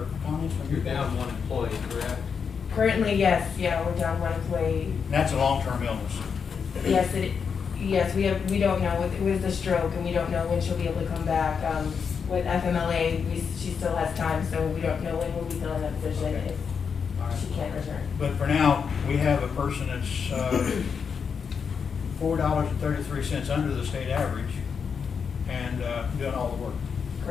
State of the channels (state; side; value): quieter; right; 6.3 dB